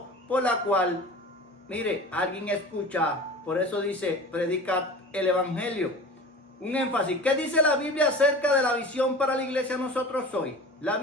por la cual, mire, alguien escucha. Por eso dice: predica el evangelio. Un énfasis. ¿Qué dice la Biblia acerca de la visión para la iglesia nosotros hoy? La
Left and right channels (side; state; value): both; normal; correlation 0.37